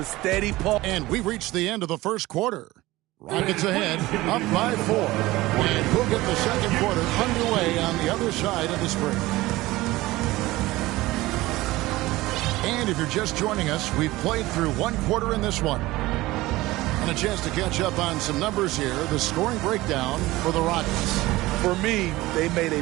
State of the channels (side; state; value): left; quieter; 18.7 dB